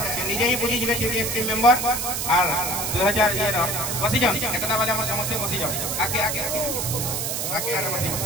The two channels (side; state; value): right; noise; hiss, 1 dB below the sound